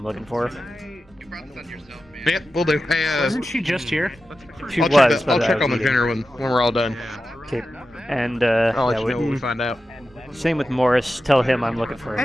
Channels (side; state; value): both; normal; correlation 0.92